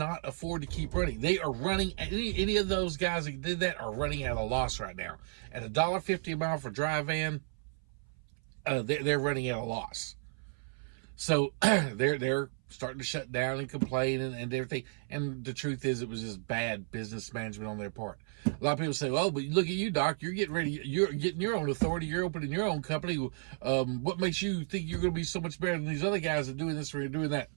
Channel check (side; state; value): left; silent; 56 dB below the other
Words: afford to keep running. They are running. Any of those guys that did that are running at a loss right now. At $1.50 a mile for dry van, they're running at a loss. So they're starting to shut down and complain and everything. And the truth is, it was just bad business management on their part. A lot of people say, "Oh, but look at you, Doc. You're getting your own authority. You're opening your own company. What makes you think you're going to be so much better than these other guys that are doing this or doing that?"